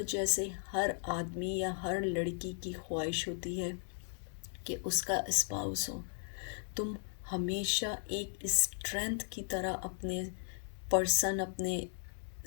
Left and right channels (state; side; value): silent; right; digital silence